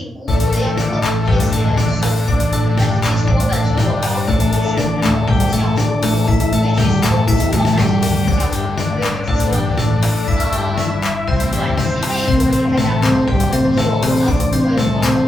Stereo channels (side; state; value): both; normal; correlation 0.85